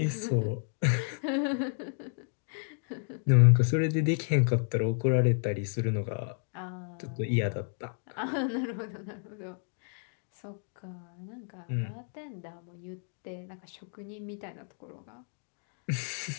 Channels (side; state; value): right; silent; 57 dB below the other